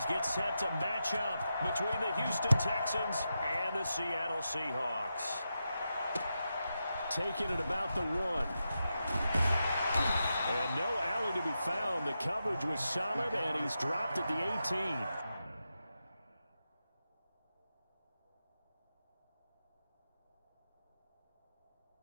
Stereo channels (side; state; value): both; inverted; correlation -0.88